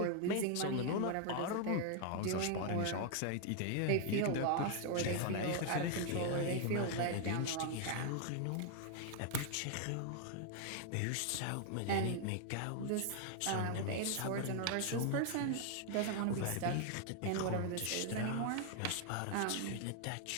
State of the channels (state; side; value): different; both; correlation 0.00